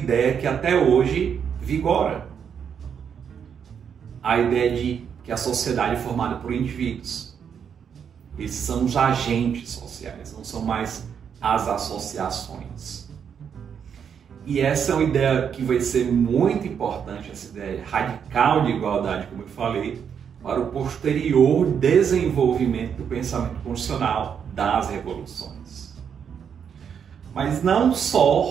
que até hoje vigora. A ideia de que a sociedade é formada por indivíduos. Esses são os agentes sociais, não são mais as associações. E essa é uma ideia que vai ser muito importante, essa ideia radical de igualdade, como eu falei, para o posterior desenvolvimento do pensamento constitucional das revoluções. Mas não só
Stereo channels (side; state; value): left; quieter; 7.5 dB